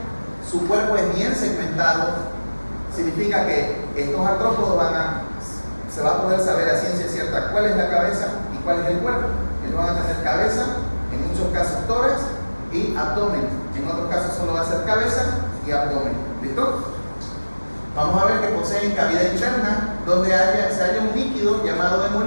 su cuerpo es bien segmentado, significa que estos artrópodos se va a poder saber a ciencia cierta cuál es la cabeza y cuál es el cuerpo. Ellos van a tener cabeza, en muchos casos tórax y abdomen, en otros casos solo va a ser cabeza y abdomen. ¿Listo? Vamos a ver que poseen cavidad interna donde se halla un líquido llamado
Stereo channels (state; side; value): inverted; both; correlation -1.00